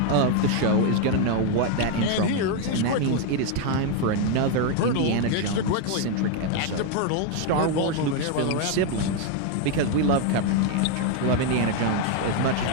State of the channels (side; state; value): both; different; correlation 0.01